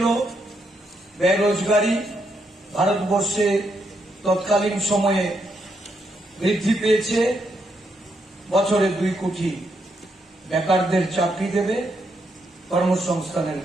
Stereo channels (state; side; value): normal; both; correlation 0.78